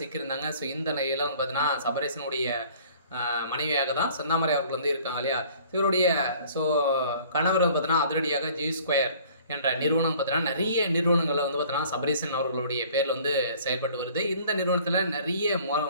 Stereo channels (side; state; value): both; inverted; correlation -0.52